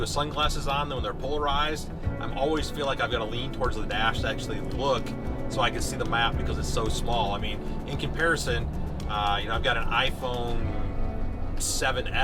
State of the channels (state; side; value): identical; both; correlation 1.00